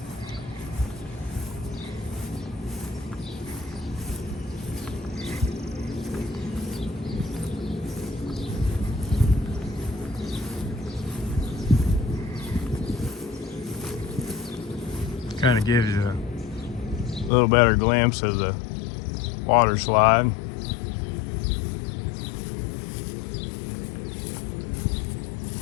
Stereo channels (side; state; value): right; drops out; at 17.3 s